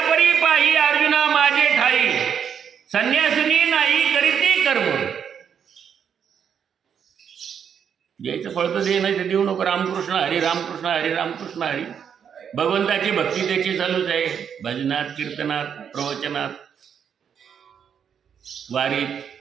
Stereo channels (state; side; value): quieter; left; 7.8 dB